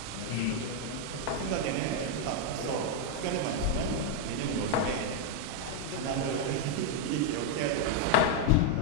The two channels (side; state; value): both; different; correlation 0.00